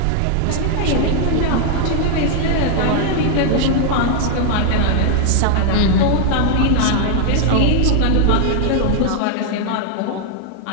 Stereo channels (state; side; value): different; both; correlation 0.00